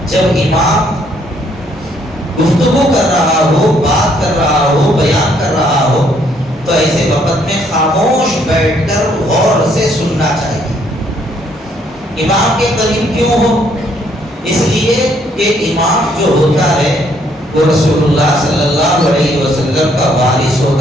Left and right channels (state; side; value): normal; both; correlation 0.68